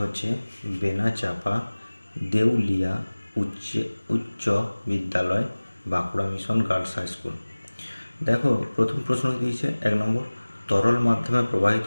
বেনাচাপা দেউলিয়া উচ্চ বিদ্যালয়, Bankura mission girls high school. দেখো, প্রথম প্রশ্ন দিয়েছে 1 নম্বর, তরল মাধ্যমে প্রবাহিত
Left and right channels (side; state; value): both; inverted; correlation -1.00